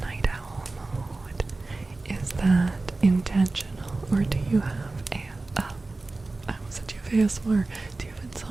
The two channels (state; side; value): quieter; left; 3.3 dB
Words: night owl mode. Is that intentional, or do you have I almost said you have ASMR. Do you have